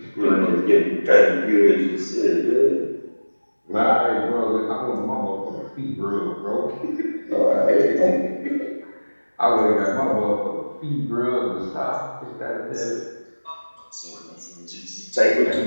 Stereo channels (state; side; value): inverted; both; correlation -1.00